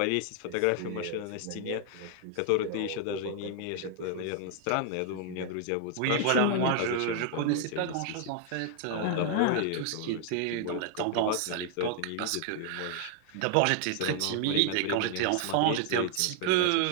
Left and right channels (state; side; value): different; both; correlation 0.00